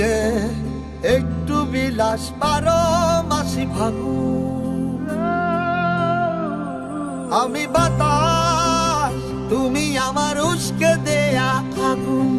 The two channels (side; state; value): both; identical; correlation 1.00